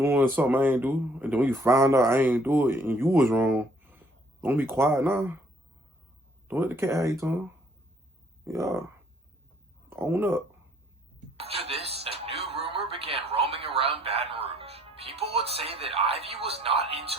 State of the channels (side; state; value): both; normal; correlation 0.63